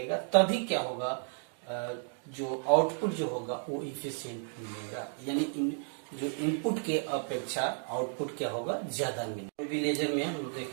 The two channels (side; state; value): left; silent; 56 dB below the other